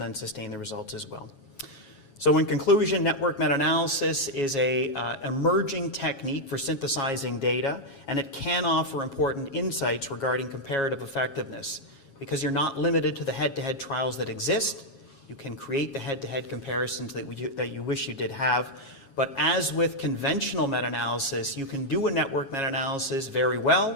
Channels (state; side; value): late; right; 7.3 ms